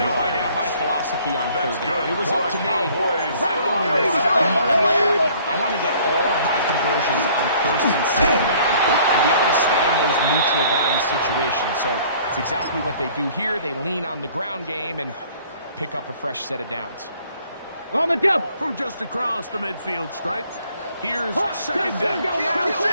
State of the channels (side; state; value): both; inverted; correlation -0.56